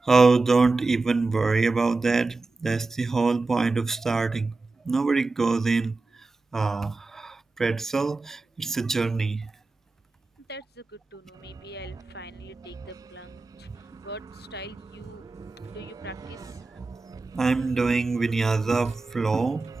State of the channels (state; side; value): quieter; left; 3.6 dB